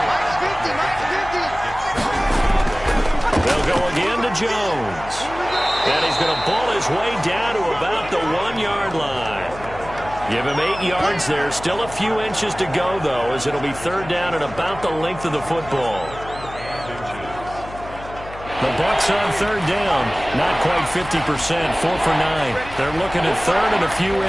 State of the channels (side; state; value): left; noise; hum, 15 dB below the sound